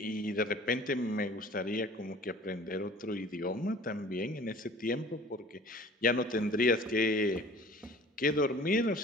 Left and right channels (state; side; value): normal; both; correlation 0.47